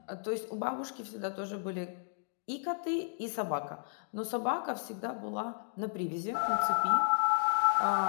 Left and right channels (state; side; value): silent; right; digital silence